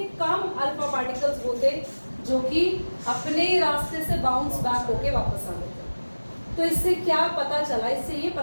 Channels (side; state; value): both; inverted; correlation -1.00